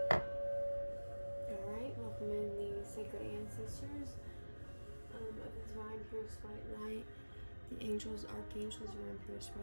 Alright, welcome in the sacred ancestors of the divine purest white light, the angels, archangels, are in purest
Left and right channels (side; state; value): both; inverted; correlation -1.00